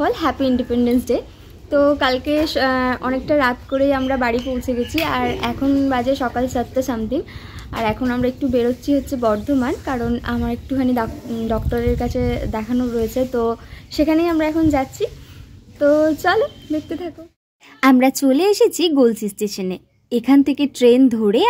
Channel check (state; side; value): identical; both; correlation 1.00